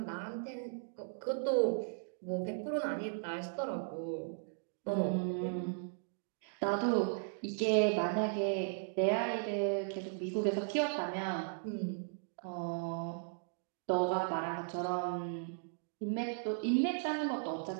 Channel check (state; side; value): silent; left; digital silence